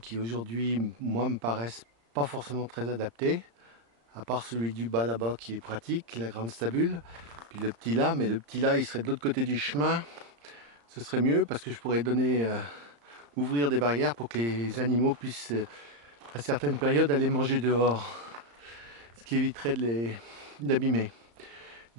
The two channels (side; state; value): left; late; 34 ms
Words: aujourd'hui, moi, me paraissent pas forcément très adaptés. À part celui du bas là-bas qui est pratique, la grande stabule, puis le petit là, mais le petit là il serait de l'autre côté du chemin, ce serait mieux parce que je pourrais ouvrir des barrières pour que les animaux puissent à certaines périodes aller manger dehors, ce qui éviterait d'abîmer.